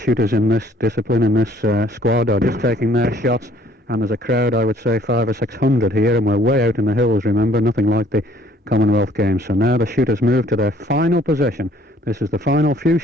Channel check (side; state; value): both; normal; correlation 0.59